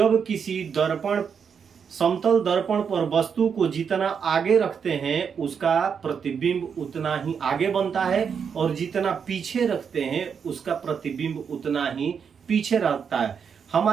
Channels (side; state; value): left; quieter; 6.7 dB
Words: किसी समतल दर्पण पर वस्तु को जितना आगे रखते हैं उसका प्रतिबिंब उतना ही आगे बनता है, और जितना पीछे रखते हैं उसका प्रतिबिंब उतना ही पीछे रहता है।